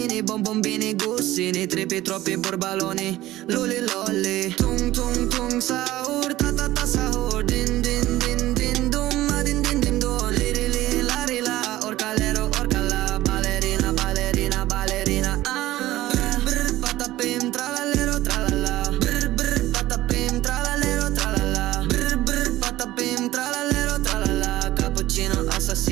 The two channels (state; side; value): quieter; left; 16.0 dB